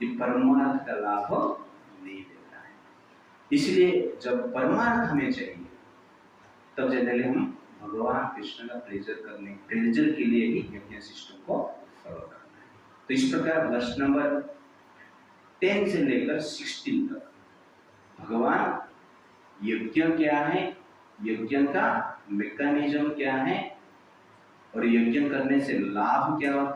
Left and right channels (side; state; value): both; identical; correlation 1.00